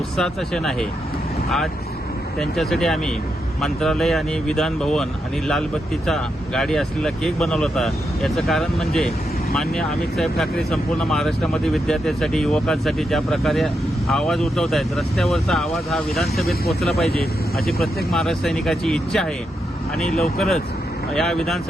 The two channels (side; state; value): both; normal; correlation 0.84